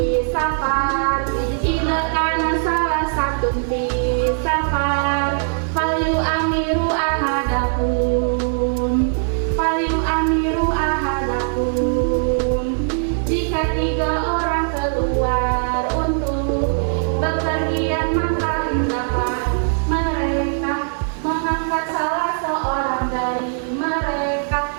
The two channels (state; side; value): silent; left; 57 dB below the other